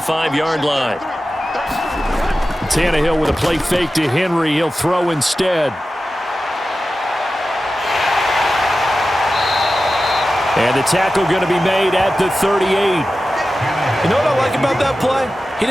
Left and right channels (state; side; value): normal; both; correlation 0.94